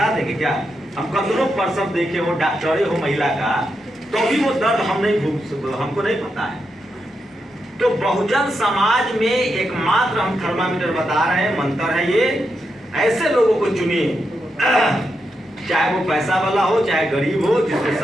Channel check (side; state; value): both; normal; correlation 0.85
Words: देंगे क्या? हम कतनों प्रसव देखे हो, डॉक्टरे हो महिला का, तो भी वो दर्द हमको नहीं पता है। तो बहुजन समाज में एकमात्र हम थर्मामीटर बता रहे हैं, मंत्र है ये, ऐसे लोगों को चुनिए, चाहे वो पैसा वाला हो चाहे गरीब हो, जिसके